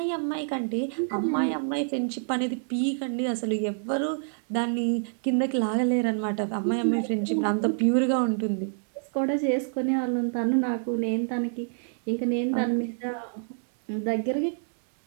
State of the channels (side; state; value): left; silent; digital silence